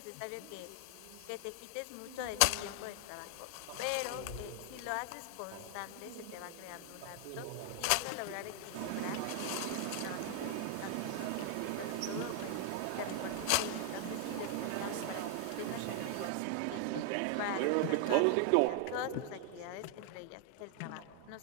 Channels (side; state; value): both; different; correlation 0.00